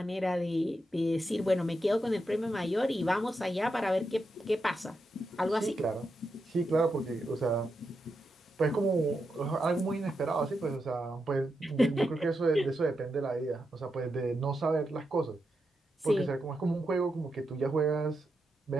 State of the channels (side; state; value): both; normal; correlation 0.85